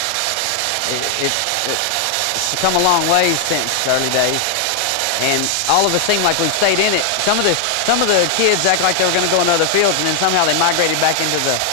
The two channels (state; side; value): different; both; correlation 0.00